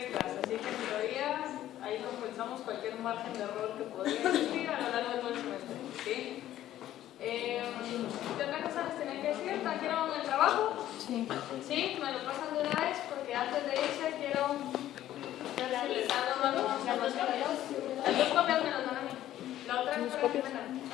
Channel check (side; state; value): right; quieter; 12.9 dB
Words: así que en teoría ahí compensamos cualquier margen de error que podría existir a lo largo de todo el semestre, ¿sí? ¿Qué otra cosa les tenía que decir? ¿Trajeron el trabajo? Sí. ¿Sí? ¿Me lo pasan de una vez? Porque antes de irse quiero... Si les dan las dos copias me las dan a mí. La otra es para que me dan.